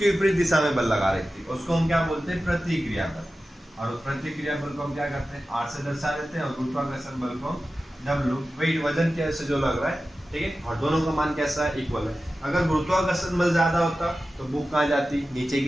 विपरीत दिशा में बल लगा रही थी, उसको हम क्या बोलते हैं, प्रतिक्रिया बल। और प्रतिक्रिया बल को हम क्या करते हैं, R से दर्शा देते हैं, और गुरुत्वाकर्षण बल को W, वेट, वजन के से जो लग रहा है। ठीक है, और दोनों का मान कैसा है, इक्वल है। अगर गुरुत्वाकर्षण बल ज्यादा होता तो बुक कहाँ जाती, नीचे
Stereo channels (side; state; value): both; normal; correlation 0.94